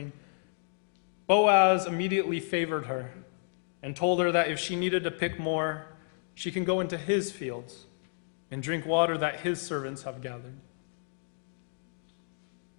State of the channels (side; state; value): right; silent; digital silence